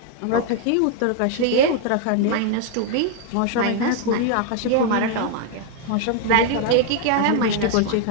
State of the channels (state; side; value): different; both; correlation 0.00